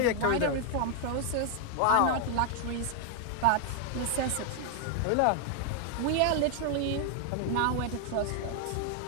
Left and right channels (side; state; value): both; different; correlation 0.00